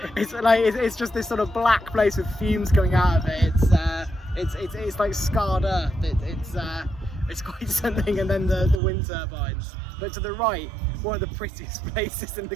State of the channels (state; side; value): drops out; left; at 8.8 s